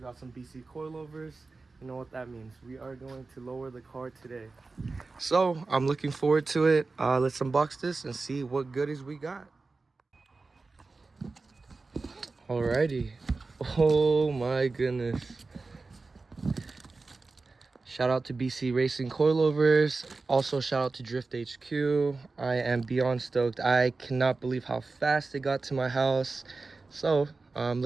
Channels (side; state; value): left; quieter; 3.8 dB